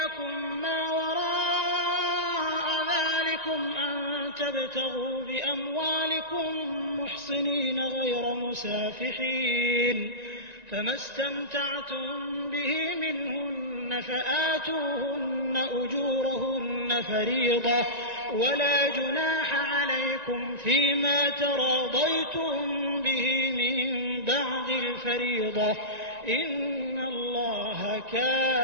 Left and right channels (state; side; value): late; left; 1.9 ms